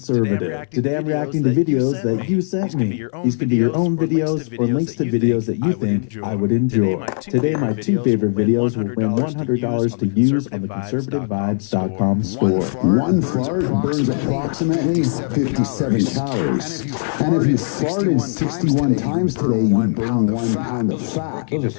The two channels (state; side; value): silent; right; 66 dB below the other